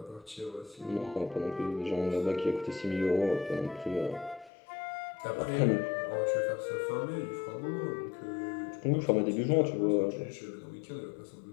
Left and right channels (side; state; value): right; drops out; at 4.5 s